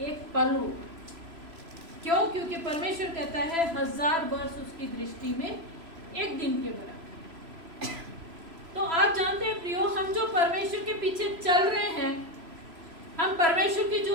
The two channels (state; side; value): late; left; 3.0 ms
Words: एक पल हो। क्यों? क्योंकि परमेश्वर कहता है 1000 वर्ष उसकी दृष्टि में एक दिन के बराबर। तो आप जानते हैं प्रियो, हम जो परमेश्वर के पीछे चल रहे हैं, हम परमेश्वर की जो